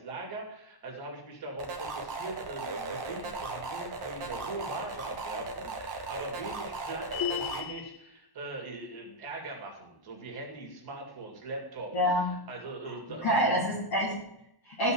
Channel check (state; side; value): late; right; 1.1 ms